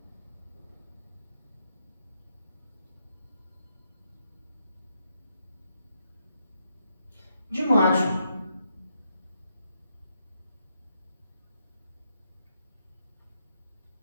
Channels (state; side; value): inverted; both; correlation -0.80